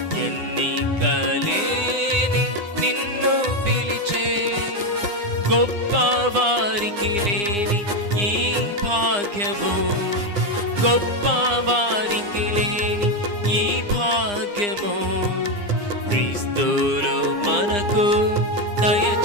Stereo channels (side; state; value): left; late; 9.8 ms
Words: ఎన్నికలేని నిన్ను పిలిచే. గొప్ప వారికి లేని ఈ భాగ్యము, గొప్ప వారికి లేని ఈ భాగ్యము క్రీస్తులో మనకు